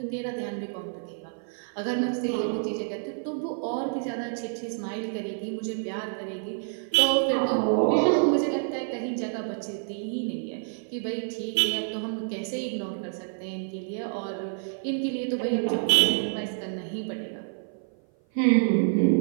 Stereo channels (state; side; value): silent; left; 55 dB below the other